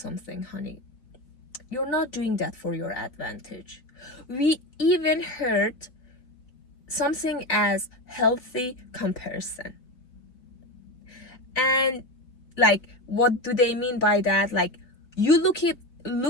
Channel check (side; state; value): right; late; 3.8 ms